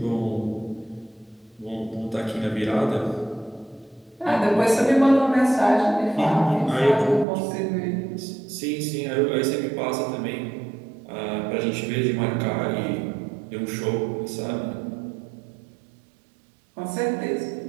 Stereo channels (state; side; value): drops out; left; at 7.2 s